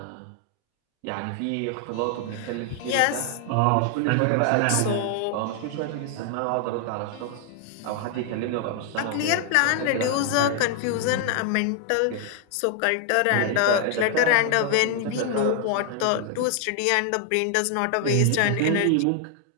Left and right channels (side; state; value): both; different; correlation 0.00